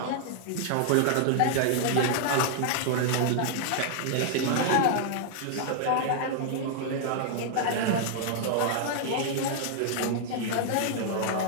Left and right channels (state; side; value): different; both; correlation -0.01